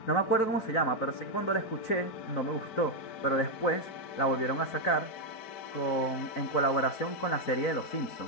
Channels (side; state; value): right; late; 4.5 ms